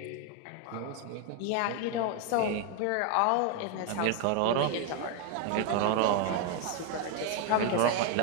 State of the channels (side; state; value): both; different; correlation 0.01